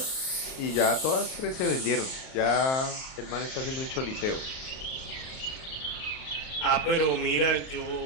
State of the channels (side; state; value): right; late; 38 ms